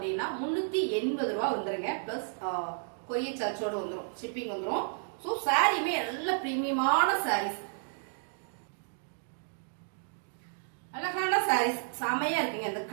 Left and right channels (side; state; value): left; silent; digital silence